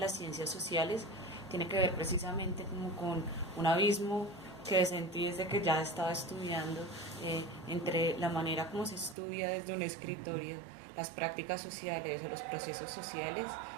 ciencias sociales tiene que ver precisamente como con un abismo que sentí desde que ya estaba estudiando entre la manera como se estudia desde un escritorio las prácticas sociales o los procesos sociales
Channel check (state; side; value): drops out; left; at 9.2 s